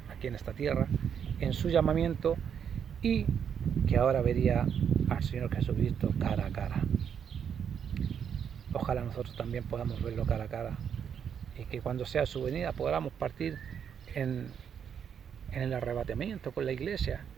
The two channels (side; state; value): left; quieter; 7.9 dB